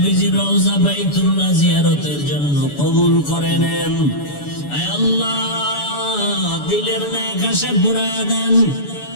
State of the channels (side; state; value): right; late; 7.0 ms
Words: রওজা বাইতুল্লাহ জিয়ারতের জন্য কবুল করে নেন। আয় আল্লাহ, দিলের নেক আশা পুরায়া দেন।